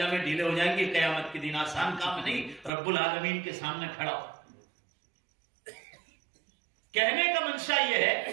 ڈھیلے ہو جائیں گے قیامت کے دن. آسان کام نہیں رب العالمین کے سامنے کھڑا ہو. کہنے کا منشا یہ ہے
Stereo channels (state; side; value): drops out; left; at 2.7 s